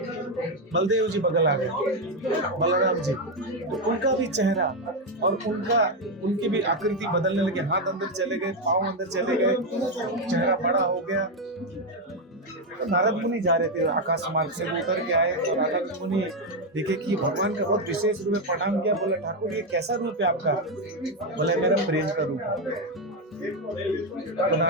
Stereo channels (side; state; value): both; normal; correlation 0.06